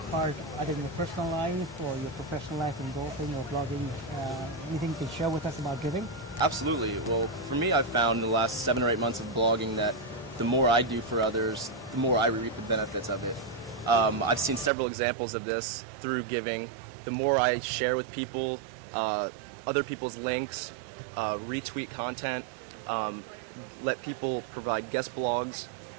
part either in your personal life or your professional life in golfing or blogging? Anything you can share with us about giving? Absolutely. Well, for me, I've found in the last 7 or 8 months of blogging that the more I do for others, the more I reap the benefits of it. I've seen several examples of this through giving. The more I share with people, other people's links, retweet content, let people provide guest blogs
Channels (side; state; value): left; drops out; at 14.7 s